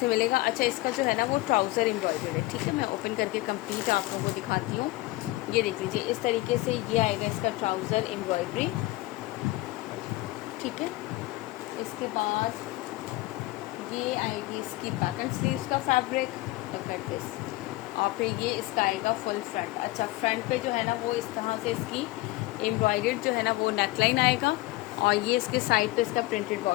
में मिलेगा। अच्छा, इसका जो है ना वो ट्राउज़र एम्ब्रॉयडर्ड है। ठीक है, मैं ओपन करके कंप्लीट आप लोगों को दिखाती हूँ। ये देख लीजिए इस तरीके से ये आएगा इसका ट्राउज़र एम्ब्रॉयडरी। ठीक है, इसके बाद ये आएगी इसकी बैक एंड स्लीव्स का फैब्रिक कर दिस। और फिर ये इसका आएगा फुल फ्रंट। अच्छा, फ्रंट पे जो है ना वो इस तरह से इसकी एम्ब्रॉयडर्ड जो है ना वो नेकलाइन आएगा और ये इसके साइड पे इसका प्रिंटेड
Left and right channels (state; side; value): quieter; right; 19.4 dB